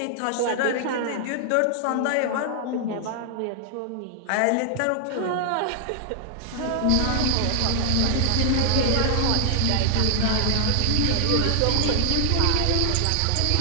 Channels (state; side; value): different; both; correlation 0.00